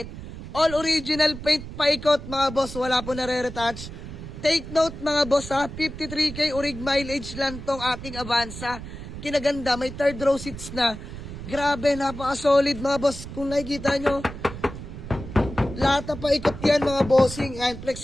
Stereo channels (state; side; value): noise; right; rumble, 11 dB below the sound